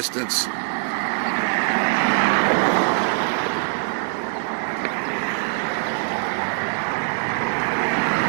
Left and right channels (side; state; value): left; silent; 64 dB below the other